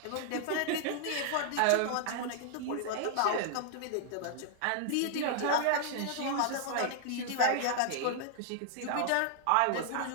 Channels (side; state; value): both; different; correlation -0.01